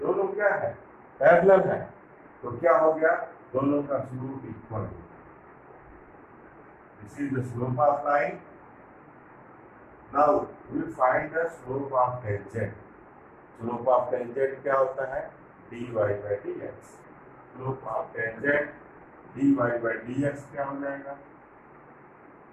क्या है? पैरेलल है। तो क्या हो गया? दोनों का स्लोप इक्वल हो गया। This is the slope of line. Now we find the slope of tangent. Slope of tangent क्या होता है? dy by dx। Slope of tangent dy by dx क्या हो जाएगा?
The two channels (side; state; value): both; identical; correlation 1.00